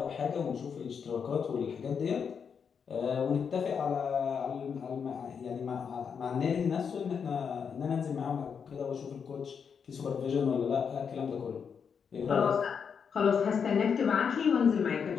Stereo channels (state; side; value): quieter; right; 6.6 dB